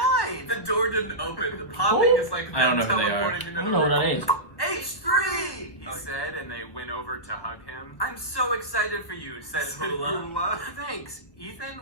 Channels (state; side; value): late; right; 1.2 ms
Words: The door didn't open. The popping is like I don't them know who they are. teleporting into I the don't know what room. that is. H3! He said, and they went over to hug him. I'm so excited for you, said Hula. Hula. Thanks. Ethan,